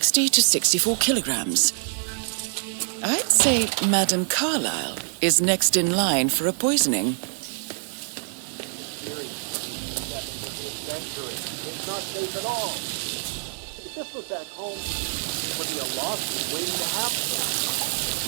to 64 kilograms. I'd say Madame Carlyle is next in line for a poisoning. It's not safe at all. If this was at home, it would be a lawsuit waiting to happen.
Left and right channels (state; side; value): silent; left; digital silence